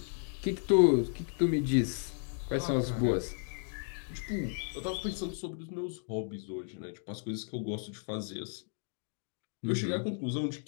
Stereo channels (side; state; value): right; silent; 55 dB below the other